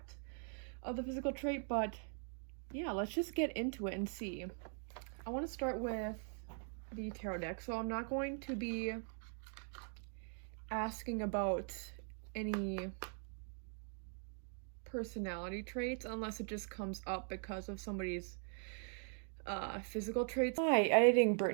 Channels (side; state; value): left; silent; 50 dB below the other